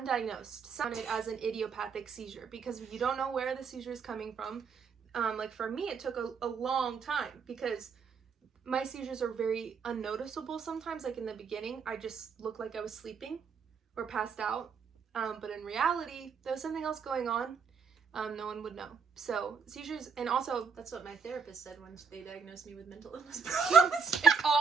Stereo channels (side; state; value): left; quieter; 5.9 dB